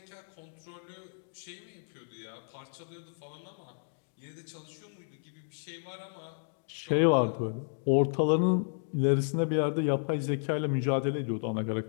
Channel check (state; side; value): silent; right; digital silence